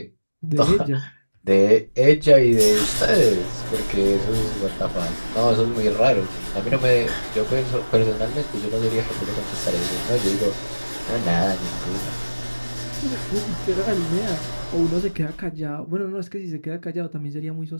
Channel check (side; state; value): both; inverted; correlation -1.00